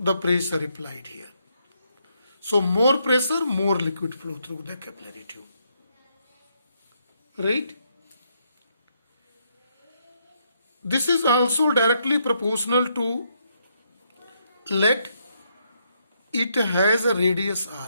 pressure applied here. So more pressure, more liquid flow through the capillary tube, right? This is also directly proportional to, let it has a radius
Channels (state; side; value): inverted; both; correlation -0.76